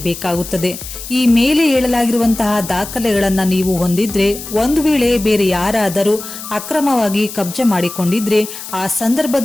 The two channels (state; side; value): noise; left; hiss, 11 dB below the sound